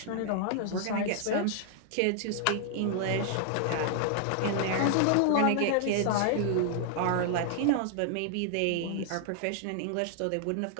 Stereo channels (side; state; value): both; different; correlation 0.00